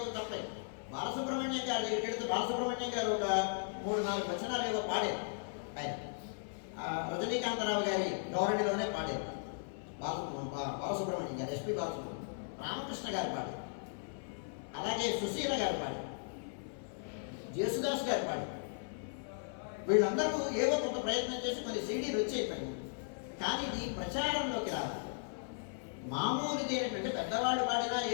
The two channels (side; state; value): right; silent; 53 dB below the other